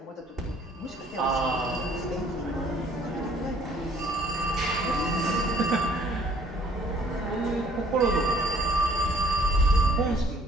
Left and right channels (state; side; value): normal; both; correlation 0.58